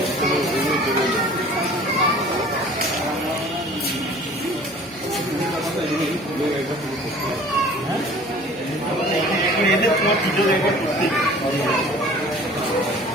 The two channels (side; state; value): both; normal; correlation 0.47